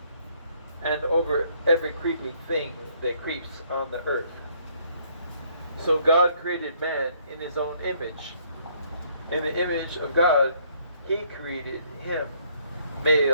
and over every creeping thing that creeps on the earth." So God created man in his own image. In the image of God, he created him.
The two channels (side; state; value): both; inverted; correlation -0.66